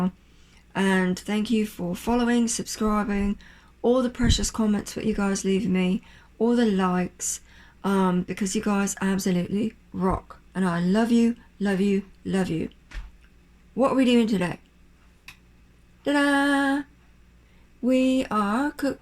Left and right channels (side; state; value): both; identical; correlation 1.00